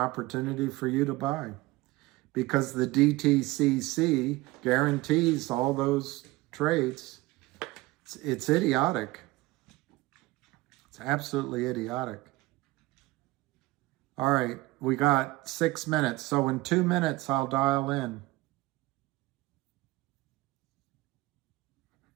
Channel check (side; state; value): left; quieter; 20.0 dB